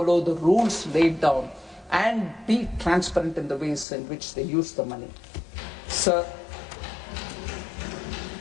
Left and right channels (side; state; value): right; drops out; at 3.9 s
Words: the rules laid down and be transparent in the ways in which they use the money. Sir,